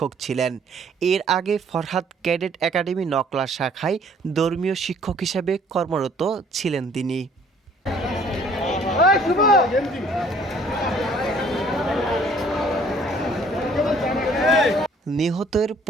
ছিলেন। এর আগে ফরহাদ ক্যাডেট একাডেমি নকলা শাখায় ধর্মীয় শিক্ষক হিসেবে কর্মরত ছিলেন তিনি। নিহতের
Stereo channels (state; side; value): normal; both; correlation 0.58